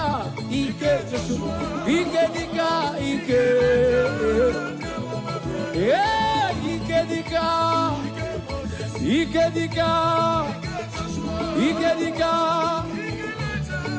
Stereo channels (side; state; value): both; identical; correlation 1.00